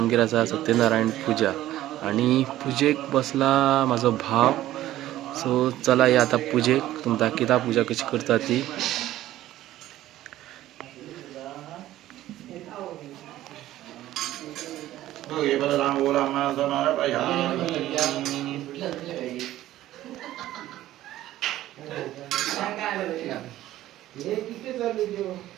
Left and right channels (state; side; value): quieter; left; 14.3 dB